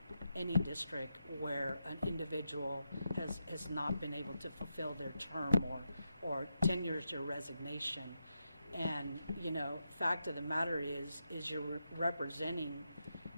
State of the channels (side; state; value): both; inverted; correlation -0.86